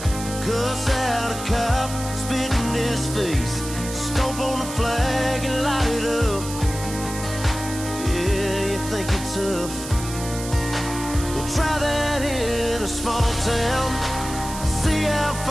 cuss out a cop, spit in his face, stomp on the flag and light it up. Yeah, you think you're tough, well try that in a small town, see how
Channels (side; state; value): right; noise; hiss, 10 dB below the sound